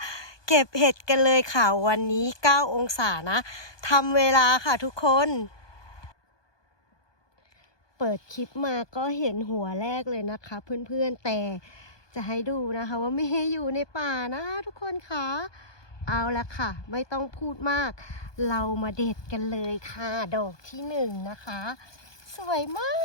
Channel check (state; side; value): late; right; 1.2 ms